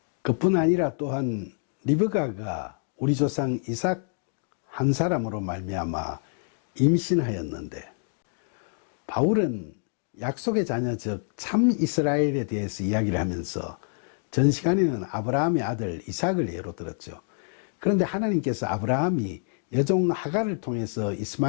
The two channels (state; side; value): silent; right; 57 dB below the other